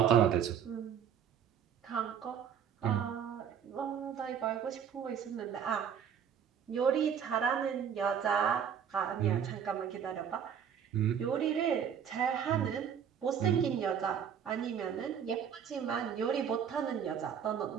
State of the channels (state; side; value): quieter; left; 8.2 dB